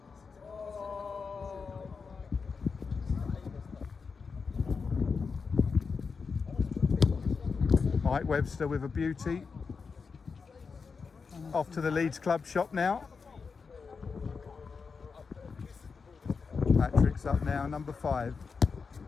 Mike Webster with a beauty. Off to the Leeds Club shop now. Patrick's up now, number 5.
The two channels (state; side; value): quieter; right; 5.1 dB